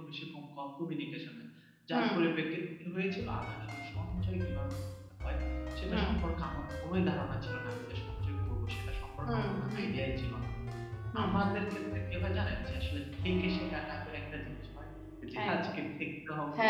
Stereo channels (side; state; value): both; identical; correlation 1.00